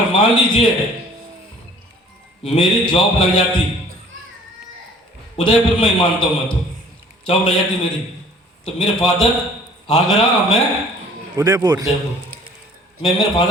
मान लीजिए मेरी जॉब लग जाती उदयपुर में ही, मानता हूं मैं, तो जॉब लग जाती मेरी, तो मेरे फादर आगरा, मैं उदयपुर। उदयपुर। मैं मेरे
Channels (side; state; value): both; normal; correlation 0.52